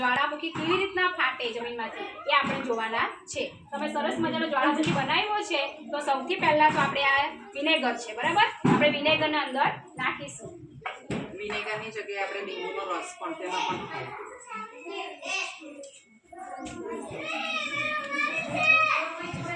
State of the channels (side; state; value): both; identical; correlation 1.00